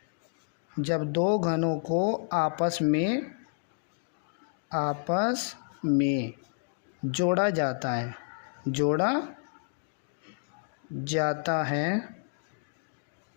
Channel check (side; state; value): right; silent; digital silence